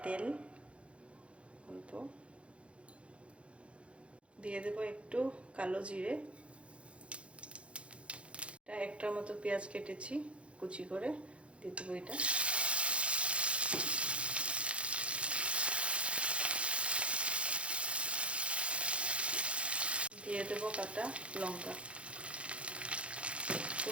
তেল, অল্প দিয়ে দেবো একটু কালো জিরে, একটার মতো পেঁয়াজ কেটেছি কুচি করে দিয়ে দেবো এটা, দিয়ে দেবো কাটা লঙ্কা।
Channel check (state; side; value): late; left; 0.060 ms